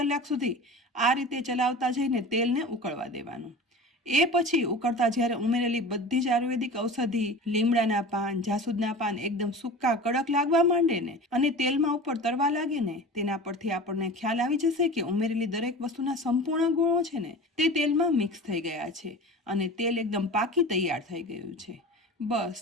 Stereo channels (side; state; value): both; normal; correlation 0.35